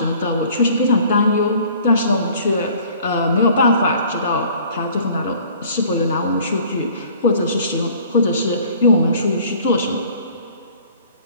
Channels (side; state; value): both; inverted; correlation -0.52